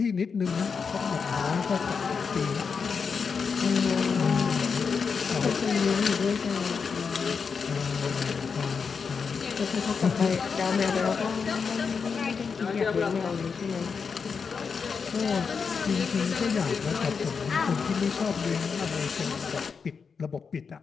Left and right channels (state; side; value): quieter; right; 5.7 dB